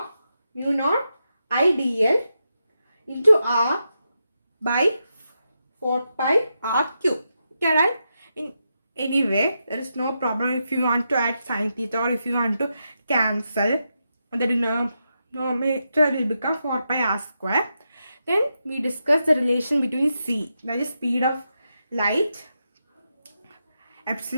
IDL into R by 4 pi R cube. Okay, right? Anyway, there is no problem if you want to add sin theta or if you want to cancel. The denominator will become 4 pi R square. Then we discuss the relation between C, that is speed of light,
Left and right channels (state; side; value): inverted; both; correlation -0.86